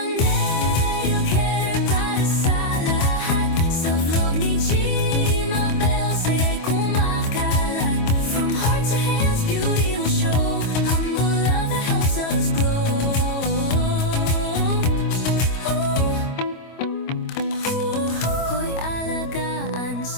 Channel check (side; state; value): right; late; 25 ms